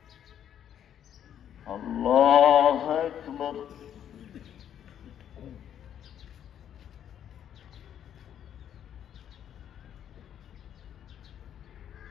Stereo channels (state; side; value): quieter; right; 9.7 dB